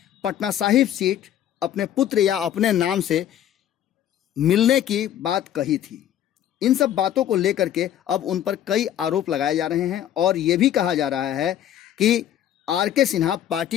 पटना साहिब सीट अपने पुत्र या अपने नाम से मिलने की बात कही थी। इन सब बातों को लेकर के अब उन पर कई आरोप लगाए जा रहे हैं और ये भी कहा जा रहा है कि आर.के. सिन्हा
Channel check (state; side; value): quieter; right; 10.9 dB